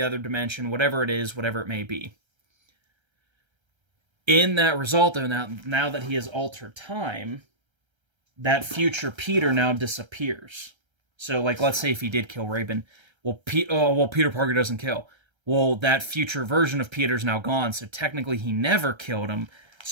other dimension, whatever it is, whatever it may be. In that result, though, now that he has altered time, that future Peter now disappears. So, like, let's say if he did kill Raven, Peter Parker doesn't kill. Well, that future version of Peter's now gone, so technically he never killed him.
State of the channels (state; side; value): late; left; 1.3 ms